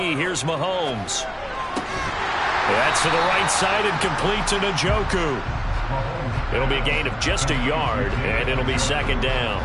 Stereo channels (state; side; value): identical; both; correlation 1.00